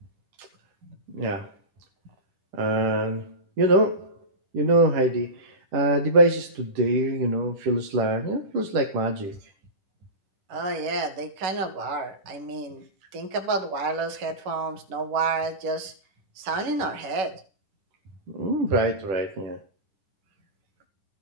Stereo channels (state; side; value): late; left; 11 ms